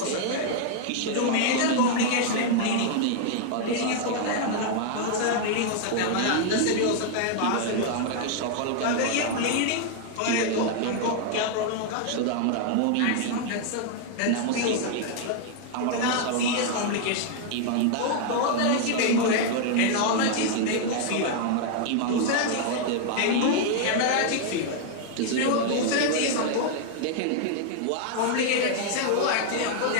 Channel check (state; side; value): different; both; correlation 0.00